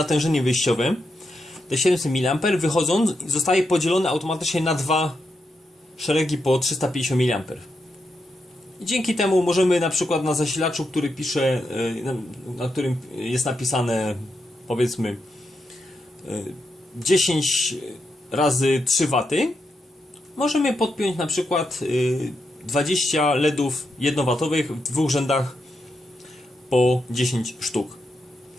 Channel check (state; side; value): normal; both; correlation 0.84